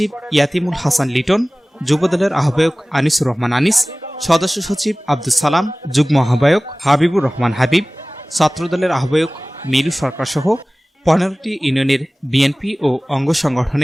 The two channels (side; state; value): both; normal; correlation 0.98